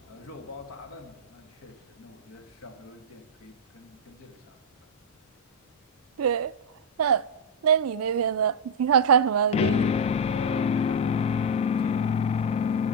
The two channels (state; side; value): normal; both; correlation -0.04